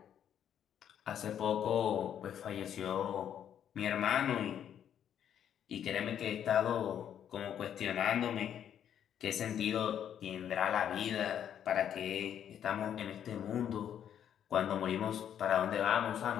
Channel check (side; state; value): right; quieter; 9.5 dB